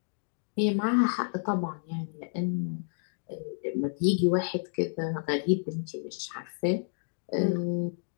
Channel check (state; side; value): silent; right; digital silence